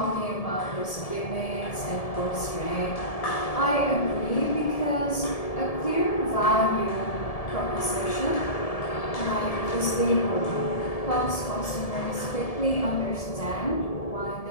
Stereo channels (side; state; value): right; late; 1.7 ms